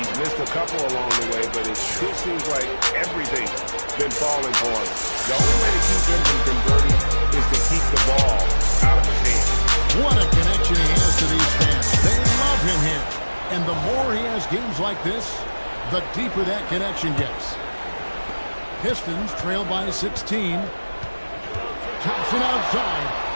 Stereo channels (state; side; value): inverted; both; correlation -1.00